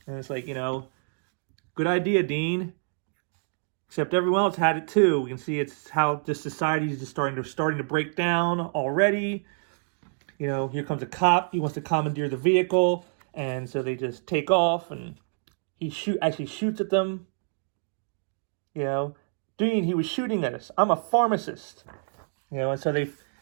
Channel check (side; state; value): left; silent; 60 dB below the other